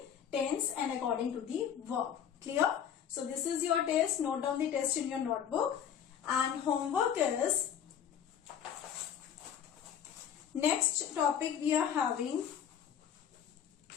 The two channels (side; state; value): right; quieter; 8.8 dB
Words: tense and according to the verb. Clear? So this is your test. Note down the test in your notebook. And homework is, next topic we are having,